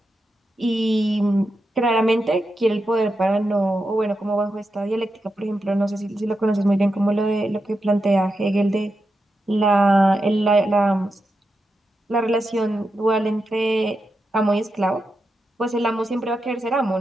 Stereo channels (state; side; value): normal; both; correlation 0.88